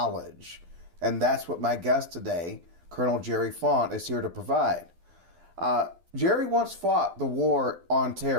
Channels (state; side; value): late; left; 12 ms